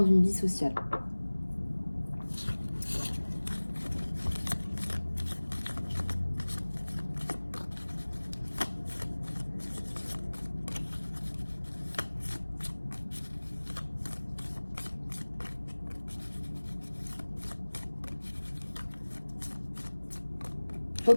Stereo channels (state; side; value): inverted; both; correlation -1.00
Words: une vie sociale.